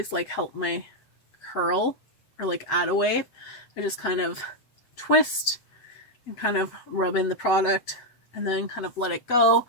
like help my curl or like add a wave, I just kind of twist and kind of rub in the product and then kind of let it go.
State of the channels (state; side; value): late; right; 7.8 ms